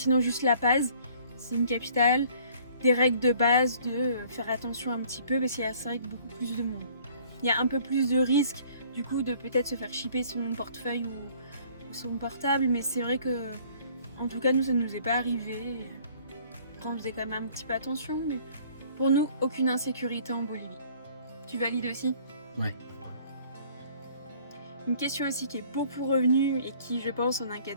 juste La Paz, c'est une capitale, des règles de base de faire attention un petit peu parce qu'il y a, c'est vrai, que beaucoup plus de monde. Il y a un peu plus de risque du coup de peut-être se faire chipper son portefeuille ou son portable, mais c'est vrai que en tout cas, nous, ça ne nous est pas arrivé. Après, on faisait quand même un petit peu attention, mais pour nous, aucune insécurité en Bolivie. Tu valides aussi? Ouais. Une question aussi qui est beaucoup revenue et qui, je pense, en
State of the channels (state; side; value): inverted; both; correlation -0.56